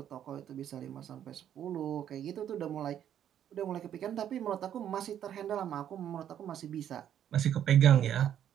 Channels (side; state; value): left; quieter; 10.1 dB